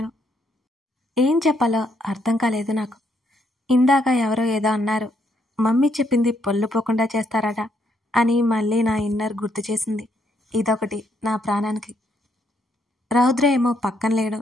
ఏం చెప్పాలో అర్థం కాలేదు నాకు. ఇందాక ఎవరో ఏదో అన్నారు, మమ్మీ చెప్పింది పొల్లుపోకుండా చేస్తారట అని మళ్ళీ నా ఇన్నర్ గుర్తు చేసింది. ఇదొకటి నా ప్రాణానికి. రౌద్ర ఏమో పక్కన లేడు.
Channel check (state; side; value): normal; both; correlation 0.74